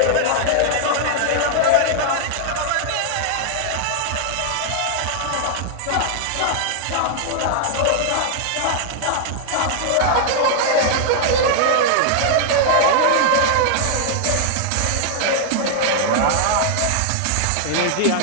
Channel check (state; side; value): different; both; correlation -0.01